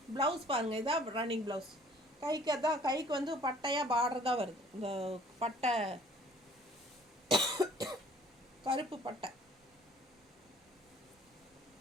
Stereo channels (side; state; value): both; normal; correlation 0.55